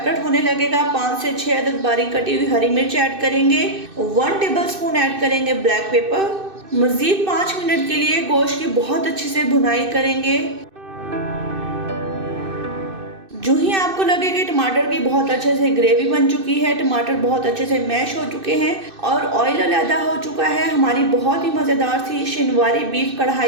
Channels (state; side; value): late; left; 2.6 ms